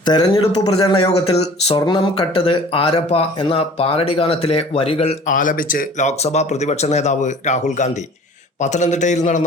തെരഞ്ഞെടുപ്പ് പ്രചരണ യോഗത്തിൽ സ്വർണം കട്ടത് ആരപ്പ എന്ന പാരഡി ഗാനത്തിലെ വരികൾ ആലപിച്ച് ലോക്സഭാ പ്രതിപക്ഷ നേതാവ് രാഹുൽ ഗാന്ധി പത്തനംതിട്ടയിൽ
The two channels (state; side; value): normal; both; correlation 0.47